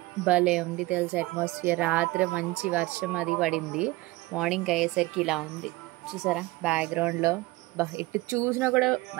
భలే ఉంది తెలుసా అట్మాస్ఫియర్. రాత్రి మంచి వర్షం అది పడింది, మార్నింగ్ అయ్యేసరికి ఇలా ఉంది చూసారా బ్యాక్గ్రౌండ్లో. ఎటు చూసినా కూడా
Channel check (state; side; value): quieter; left; 20.7 dB